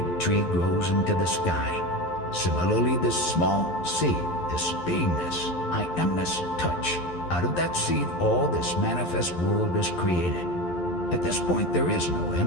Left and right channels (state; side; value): late; right; 11 ms